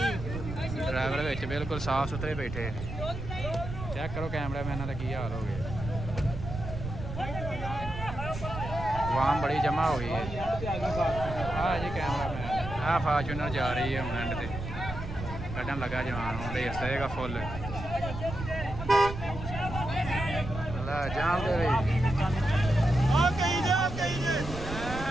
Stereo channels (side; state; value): right; noise; rumble, 8 dB below the sound